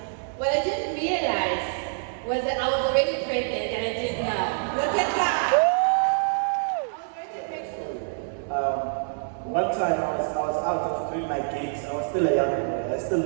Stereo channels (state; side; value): silent; left; digital silence